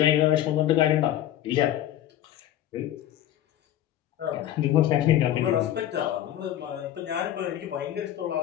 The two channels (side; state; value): right; quieter; 12.2 dB